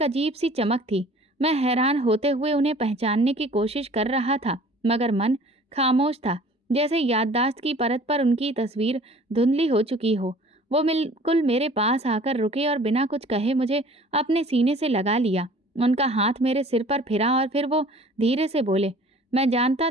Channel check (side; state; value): both; normal; correlation 0.49